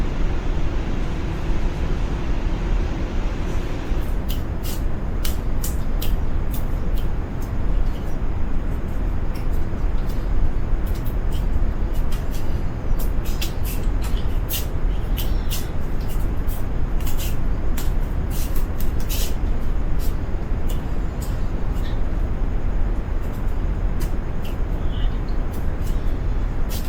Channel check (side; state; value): both; identical; correlation 1.00